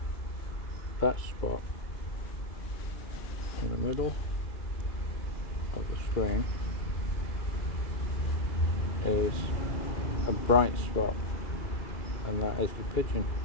that spot in the middle of the screen is a bright spot, and that is the pigeon.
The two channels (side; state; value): right; late; 2.3 ms